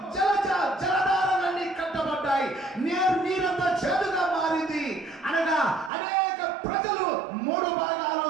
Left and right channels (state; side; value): drops out; left; at 5.9 s